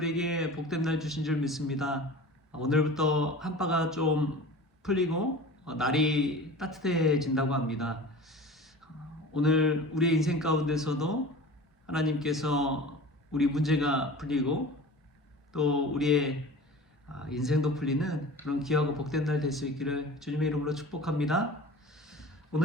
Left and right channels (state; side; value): normal; both; correlation 0.37